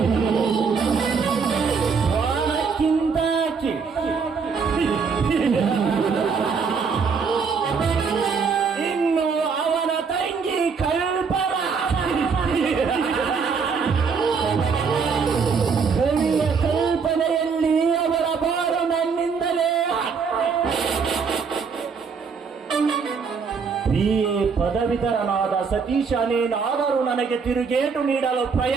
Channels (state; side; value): quieter; left; 5.5 dB